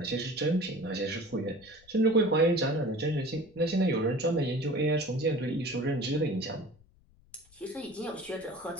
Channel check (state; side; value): noise; left; rumble, 28 dB below the sound